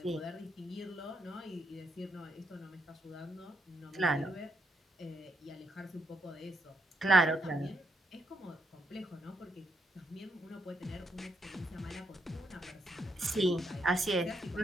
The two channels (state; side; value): normal; both; correlation 0.78